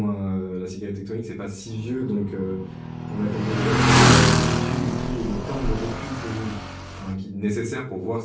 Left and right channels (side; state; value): both; identical; correlation 1.00